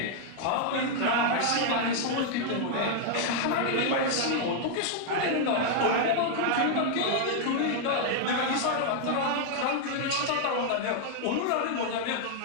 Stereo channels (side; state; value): both; different; correlation 0.00